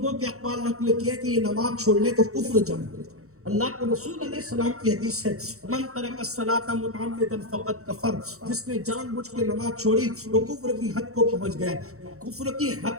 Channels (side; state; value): left; late; 0.64 ms